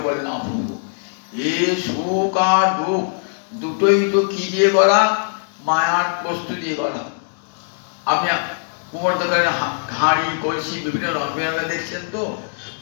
বলে না প্রভু, এ সুখ আর দুঃখ দুটোই তো কি দিয়ে গড়া? মায়ার বস্তু দিয়ে গড়া। আপনি কুমোর দোকানে হাঁড়ি কলসি বিভিন্ন রঙে দেখছেন তো,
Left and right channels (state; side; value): silent; right; digital silence